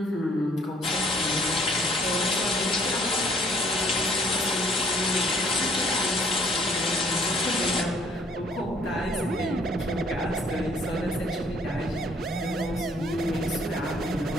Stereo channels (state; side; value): normal; both; correlation 0.61